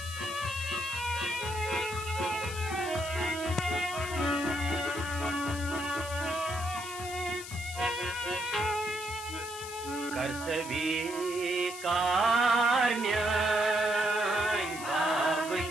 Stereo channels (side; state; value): left; noise; hiss, 11 dB below the sound